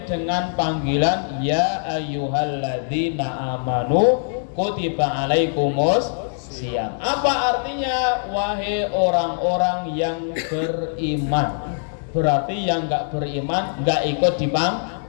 dengan panggilan ya ayyuhalladzina amanu kutiba alaikumus siyam. Apa artinya? Wahai orang-orang yang beriman. Berarti yang enggak beriman enggak ikut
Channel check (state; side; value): silent; right; digital silence